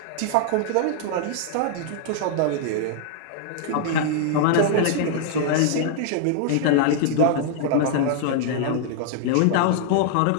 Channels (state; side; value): different; both; correlation -0.01